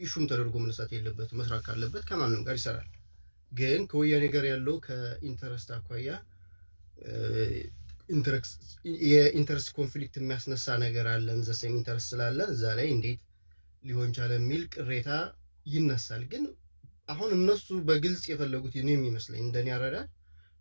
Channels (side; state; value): both; inverted; correlation -1.00